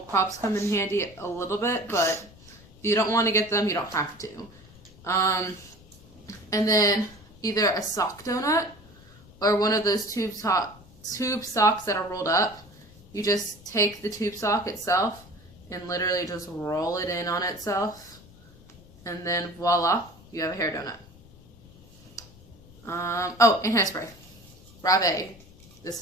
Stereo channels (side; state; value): left; noise; rumble, 23 dB below the sound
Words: come in handy a little bit, but if you don't want to get them, you don't have to. And then either a sock donut or one of those tube socks that are rolled up. You just take the tube sock itself and literally just roll it in on itself, and then voila, you have a hair donut. Oh, and hairspray. Rave. This